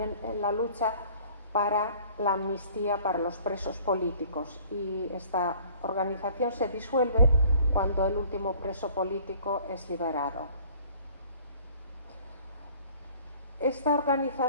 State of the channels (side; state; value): both; inverted; correlation -0.53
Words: en la lucha para la amnistía para los presos políticos, y esta organización se disuelve cuando el último preso político es liberado. Esta